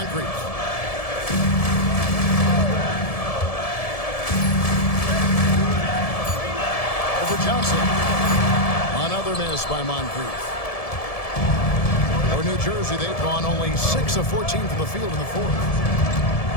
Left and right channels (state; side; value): late; right; 1.7 ms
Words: Over Johnson. Another miss by Moncrief. For New Jersey, they've gone only 6 of 14 from the field in the 4th.